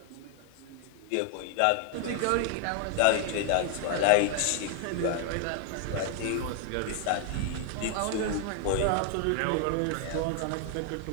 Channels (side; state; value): both; different; correlation 0.00